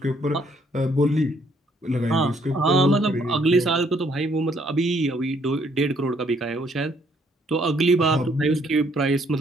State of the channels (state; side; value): normal; both; correlation 0.68